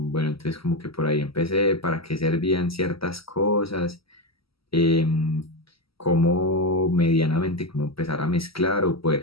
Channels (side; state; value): right; late; 0.75 ms